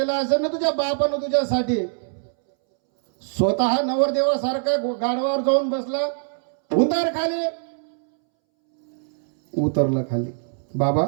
असेल ना तुझ्या बापानं तुझ्यासाठी. स्वतः नवरदेवासारखा गाडवावर जाऊन बसला. उतर खाली. उतरलं खाली. बाबा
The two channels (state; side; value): silent; left; 64 dB below the other